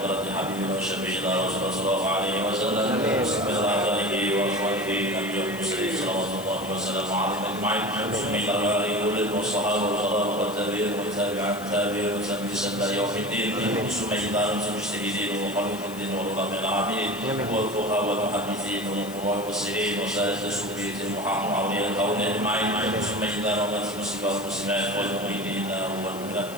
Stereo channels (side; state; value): left; noise; hiss, 16 dB below the sound